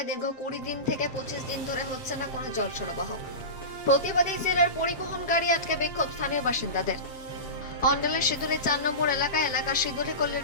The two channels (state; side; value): late; right; 7.5 ms